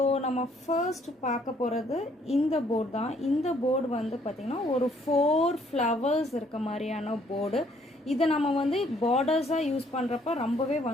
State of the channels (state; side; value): normal; both; correlation 0.65